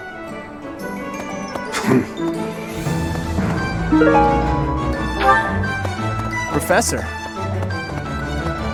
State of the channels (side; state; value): both; identical; correlation 1.00